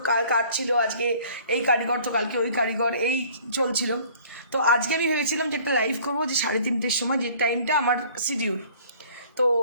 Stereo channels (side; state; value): both; inverted; correlation -0.52